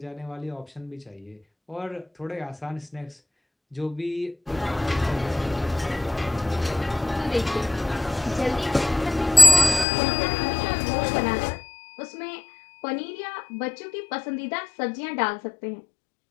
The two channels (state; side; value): drops out; right; at 9.9 s